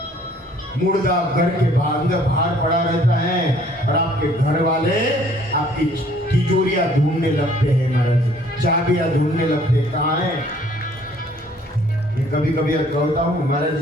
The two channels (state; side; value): normal; both; correlation 0.59